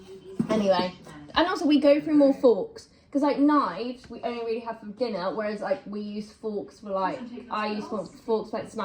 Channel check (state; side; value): identical; both; correlation 1.00